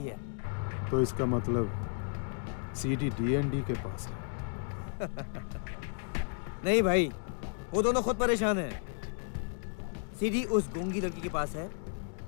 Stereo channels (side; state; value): right; silent; digital silence